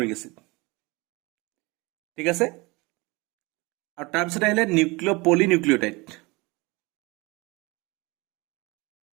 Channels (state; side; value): quieter; left; 25.0 dB